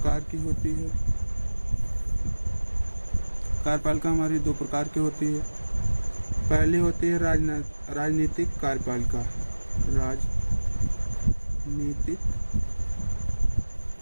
की होती है। कार्यपालिका हमारी दो प्रकार की होती है। पहली होती है राजनीतिक कार्यपालिका। राजनीतिक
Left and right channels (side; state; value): both; inverted; correlation -1.00